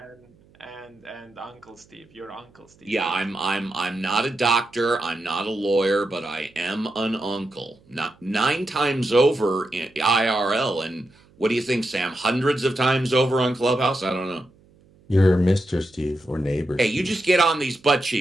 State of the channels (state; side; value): noise; right; hum, 30 dB below the sound